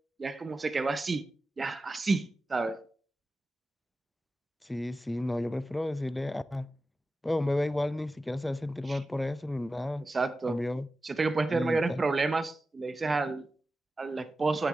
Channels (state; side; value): normal; both; correlation 0.93